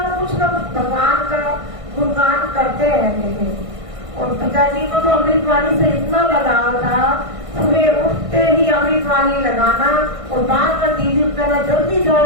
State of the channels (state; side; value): late; left; 1.5 ms